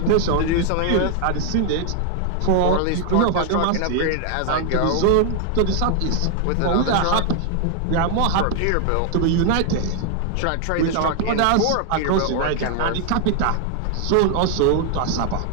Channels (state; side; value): different; both; correlation 0.00